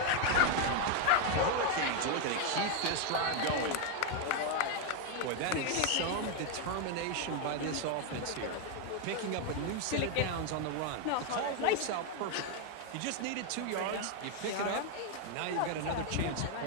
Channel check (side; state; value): both; different; correlation 0.01